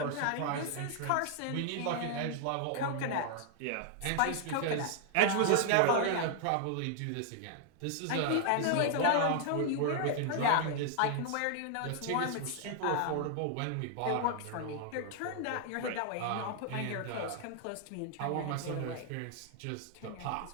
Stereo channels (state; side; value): different; both; correlation 0.00